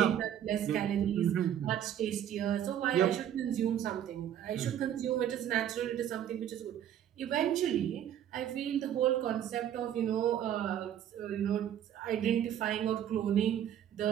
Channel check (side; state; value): left; quieter; 10.3 dB